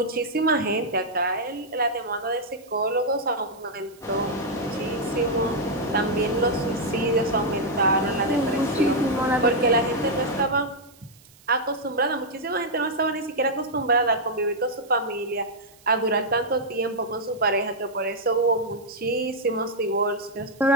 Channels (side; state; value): right; noise; hiss, 27 dB below the sound